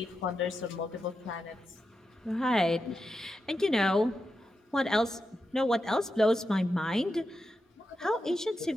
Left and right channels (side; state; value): both; normal; correlation 0.88